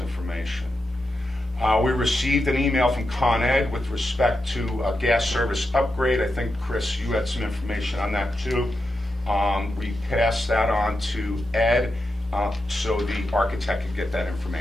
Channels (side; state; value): both; normal; correlation 0.88